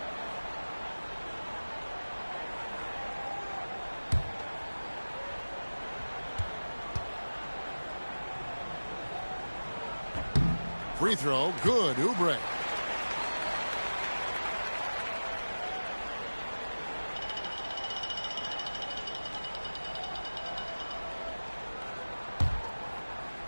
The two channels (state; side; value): inverted; both; correlation -1.00